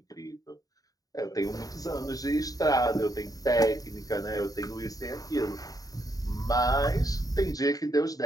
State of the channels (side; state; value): right; late; 0.18 ms